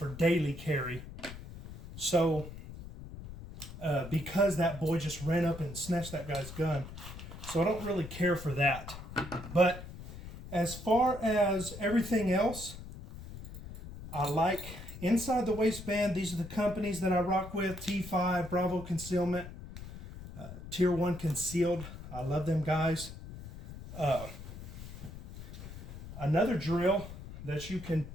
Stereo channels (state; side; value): noise; left; rumble, 12 dB below the sound